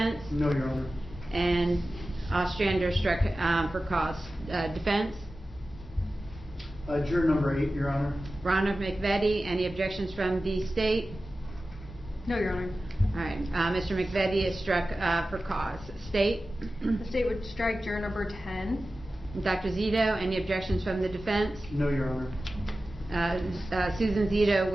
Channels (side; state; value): both; normal; correlation 0.95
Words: No, Your Honor. And Ostrander struck for cause. Defense? Juror number 8, Your Honor. Ronald McVetti, any objections from the state? No, Your Honor. All right, Mr. McVetti is struck for cause. State? The state would strike juror number 10. Dr. Zito, any objections from the defense? No, Your Honor. Susan Zito